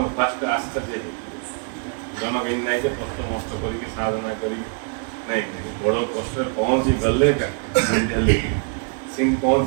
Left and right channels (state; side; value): quieter; left; 38.4 dB